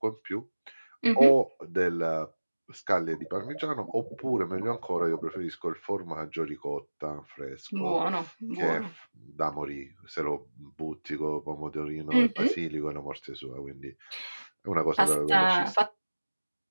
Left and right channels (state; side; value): inverted; both; correlation -1.00